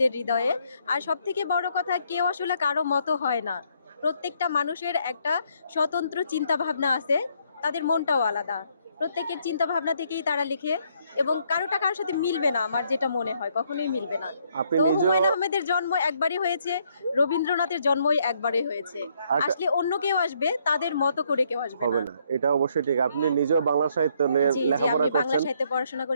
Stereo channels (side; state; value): both; inverted; correlation -0.71